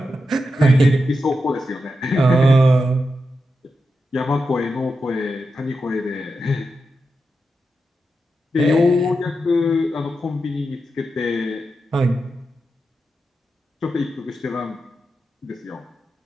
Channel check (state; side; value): normal; both; correlation 0.88